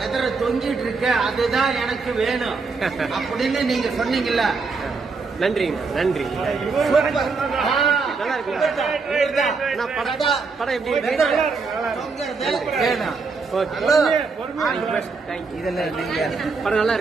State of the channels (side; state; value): left; quieter; 4.5 dB